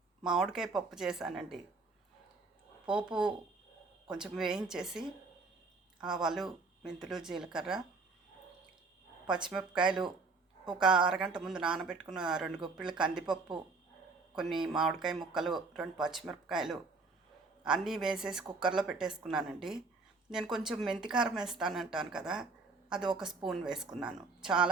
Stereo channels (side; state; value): left; quieter; 4.0 dB